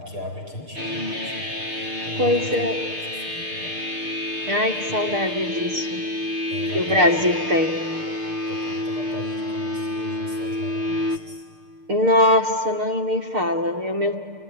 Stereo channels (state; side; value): late; left; 6.6 ms